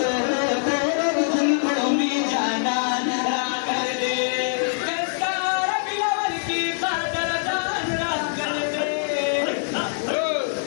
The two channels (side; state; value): right; silent; digital silence